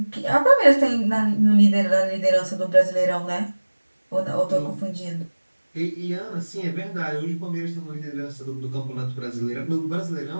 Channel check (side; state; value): both; inverted; correlation -1.00